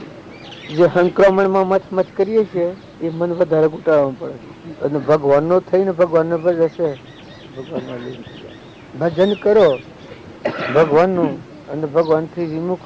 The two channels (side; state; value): both; identical; correlation 1.00